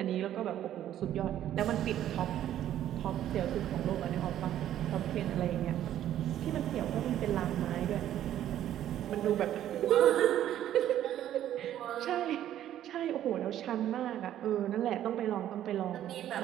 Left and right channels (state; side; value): quieter; left; 11.7 dB